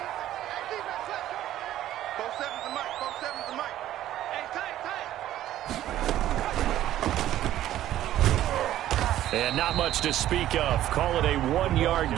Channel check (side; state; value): left; quieter; 13.0 dB